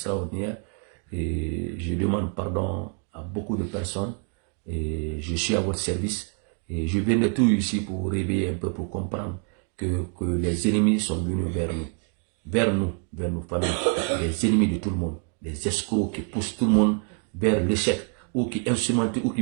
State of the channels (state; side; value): quieter; left; 40.0 dB